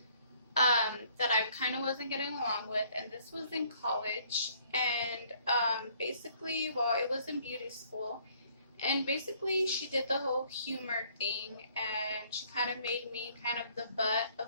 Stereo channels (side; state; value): both; inverted; correlation -0.62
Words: that I kind of wasn't getting along with, and this was in college. And basically, well, it was in beauty school, and basically she did the whole humor thing, and she kind of made me kind of the butt